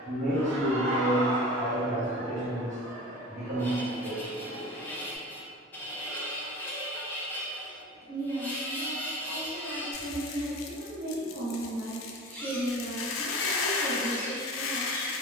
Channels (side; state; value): both; normal; correlation 0.35